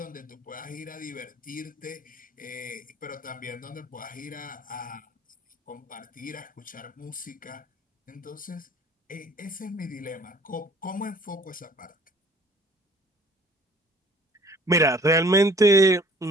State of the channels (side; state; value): both; normal; correlation 0.53